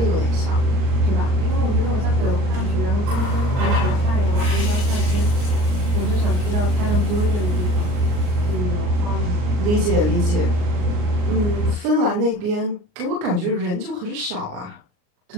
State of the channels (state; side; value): late; left; 39 ms